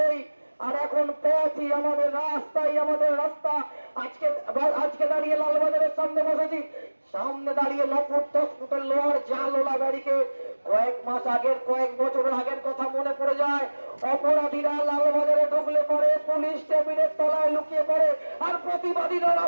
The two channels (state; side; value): inverted; both; correlation -1.00